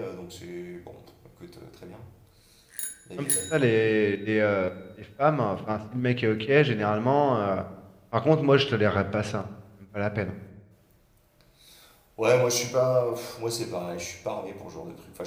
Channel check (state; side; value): identical; both; correlation 1.00